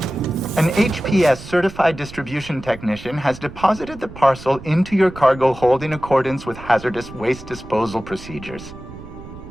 An HPS certified distribution technician has deposited the parcel into your cargo hold in accordance with hazardous waste disposal procedures.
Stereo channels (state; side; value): noise; right; rumble, 16 dB below the sound